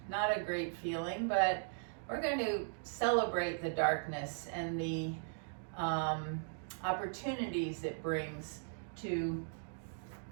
not a great feeling, but we're going to celebrate the darkness and the opportunities it brings to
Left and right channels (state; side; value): silent; left; digital silence